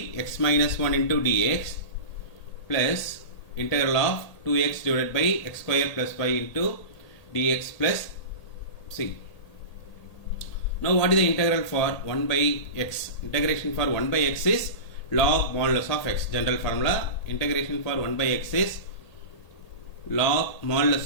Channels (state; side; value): late; right; 1.8 ms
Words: x minus 1 into dx plus integral of 2x divided by x square plus 5 into dx plus c. Now what is the integral for 1 by x? Integration for 1 by x is log modulus of x. General formula. Integration for 1 by x is log modulus